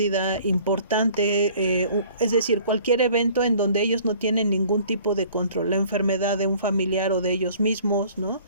importante, es decir, cualquier evento en donde ellos no tienen ningún tipo de control, la enfermedad de un familiar o de ellos mismos, ¿no?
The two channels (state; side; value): inverted; both; correlation -0.52